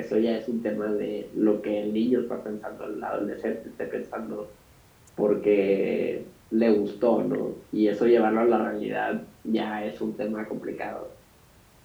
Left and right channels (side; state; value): both; identical; correlation 1.00